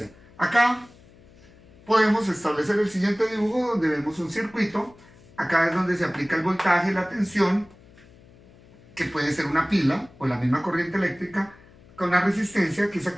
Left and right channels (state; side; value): noise; left; hum, 25 dB below the sound